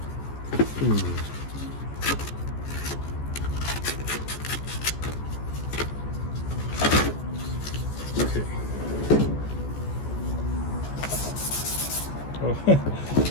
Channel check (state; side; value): late; right; 14 ms